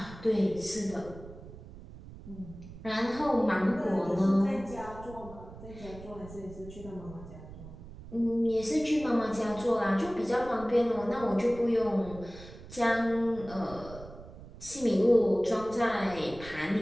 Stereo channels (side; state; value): right; noise; rumble, 16 dB below the sound